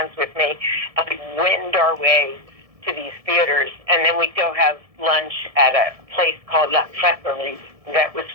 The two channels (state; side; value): late; left; 1.7 ms